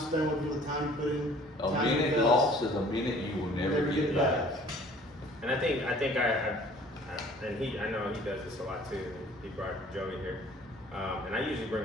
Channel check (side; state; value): both; normal; correlation 0.52